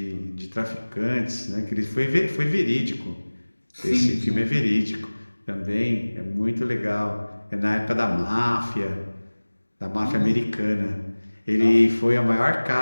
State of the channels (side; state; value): both; inverted; correlation -1.00